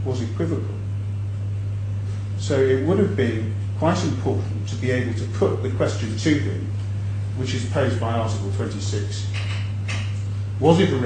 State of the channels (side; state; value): both; identical; correlation 1.00